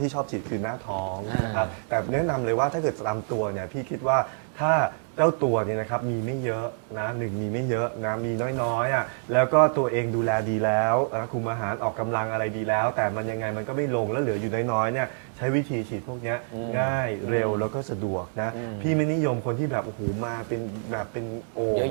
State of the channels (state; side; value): silent; left; digital silence